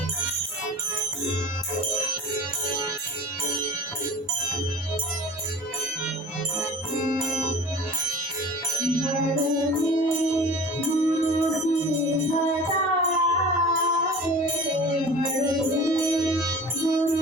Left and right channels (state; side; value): normal; both; correlation 0.42